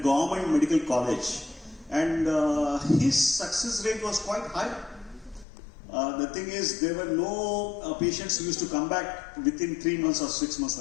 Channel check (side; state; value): right; drops out; at 5.5 s